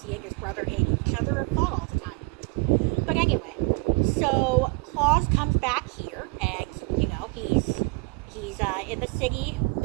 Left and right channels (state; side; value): quieter; left; 29.1 dB